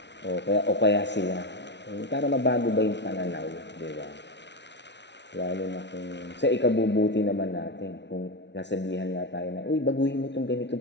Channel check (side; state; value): right; late; 0.51 ms